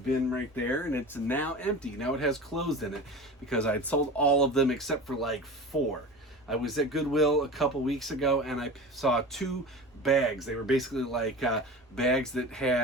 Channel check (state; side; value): normal; both; correlation 0.33